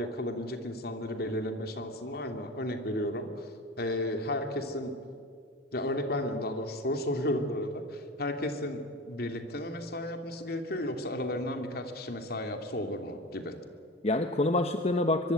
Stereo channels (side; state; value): both; normal; correlation 0.32